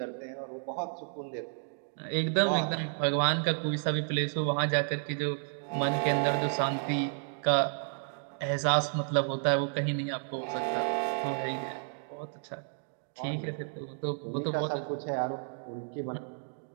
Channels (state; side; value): silent; left; digital silence